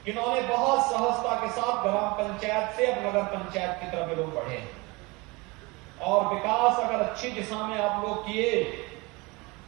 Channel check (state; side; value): quieter; left; 25.2 dB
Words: इन्होंने बहुत सहजता के साथ ग्राम पंचायत से अब नगर पंचायत की तरफ लोग बढ़े हैं। और विकास अगर अच्छी दिशा में आप लोग किए